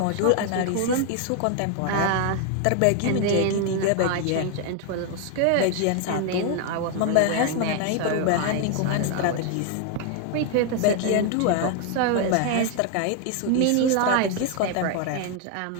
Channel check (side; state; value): both; different; correlation 0.00